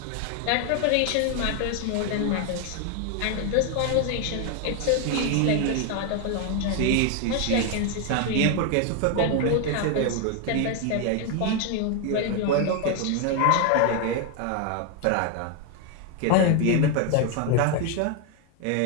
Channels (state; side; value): different; both; correlation 0.01